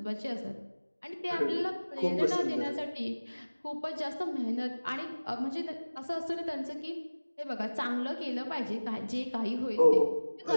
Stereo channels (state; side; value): inverted; both; correlation -1.00